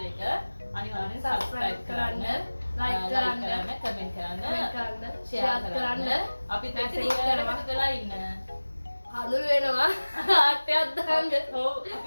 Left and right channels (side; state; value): both; inverted; correlation -1.00